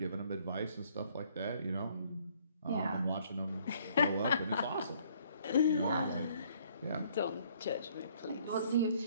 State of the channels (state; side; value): inverted; both; correlation -0.63